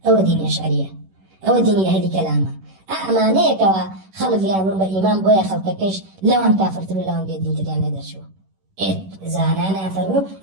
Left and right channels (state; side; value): late; left; 11 ms